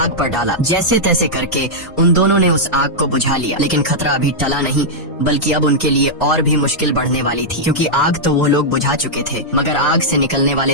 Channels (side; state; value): both; normal; correlation -0.07